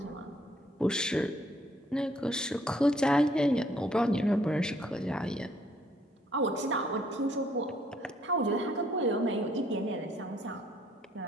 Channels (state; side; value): normal; both; correlation 0.66